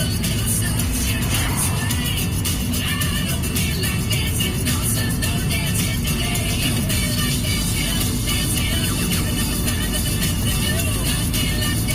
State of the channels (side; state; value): both; identical; correlation 1.00